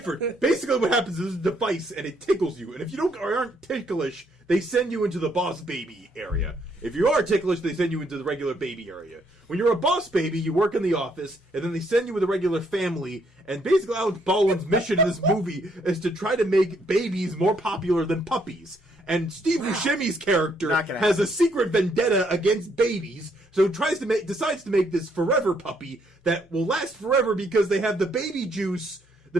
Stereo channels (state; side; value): normal; both; correlation 0.71